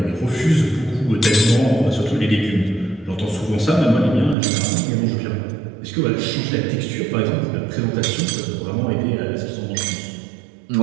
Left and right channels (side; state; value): left; drops out; at 4.4 s